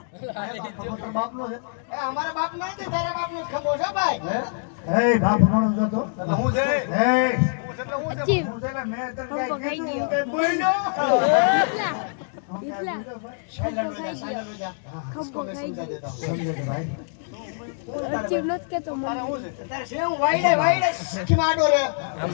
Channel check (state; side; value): silent; right; digital silence